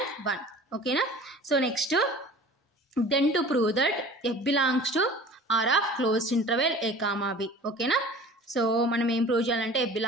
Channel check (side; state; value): both; normal; correlation 0.43